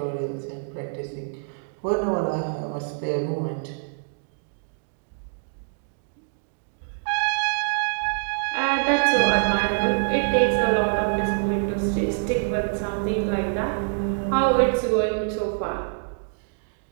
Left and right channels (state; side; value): silent; left; digital silence